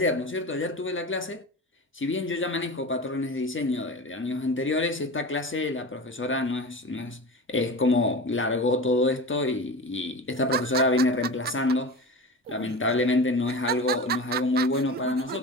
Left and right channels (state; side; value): normal; both; correlation 0.30